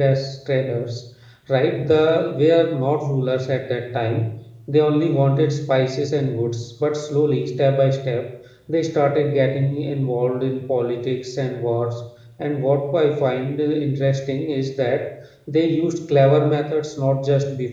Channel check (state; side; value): identical; both; correlation 1.00